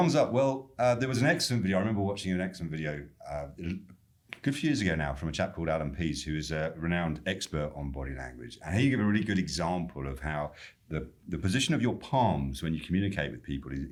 up. Well, there was an excellent video. I remember watching an excellent video a good few years ago now from a chap called Alan Pease, who is a renowned expert on body language. And he gave a really good example of how the position of your palms when you communicate with people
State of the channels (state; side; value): identical; both; correlation 1.00